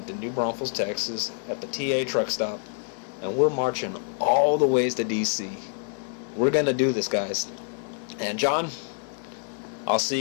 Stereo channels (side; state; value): right; silent; 58 dB below the other